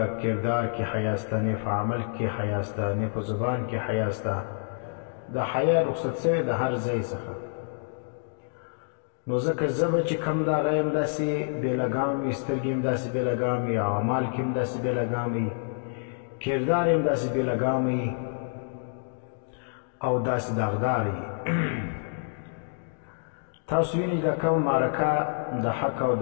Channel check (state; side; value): silent; right; digital silence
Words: کردار کې حیا سته، نه په عمل کې حیا سته، نه په زبان کې حیا سته. د حیا رخصت شوی د هر ځای څخه. نو ځکه ژبه چې کوم ده، هغه هم داسې بې لګام وي، سترګې هم داسې بې لګام وي، او اعمال کې هم داسې بې لګام وي، کردار هم داسې بې لګام وي، او داسې داغدار وي. تاسو وینئ د کوم معرکه د حق او